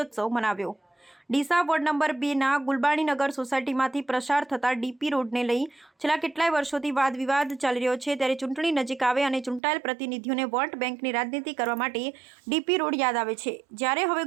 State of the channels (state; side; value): drops out; left; at 9.6 s